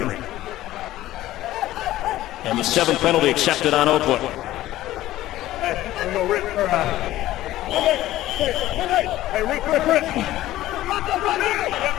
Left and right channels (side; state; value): right; quieter; 15.0 dB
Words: And the 7th penalty accepted on Oakland. Hey, Rick.